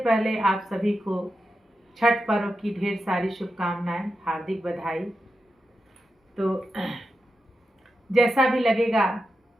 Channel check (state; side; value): normal; both; correlation 0.89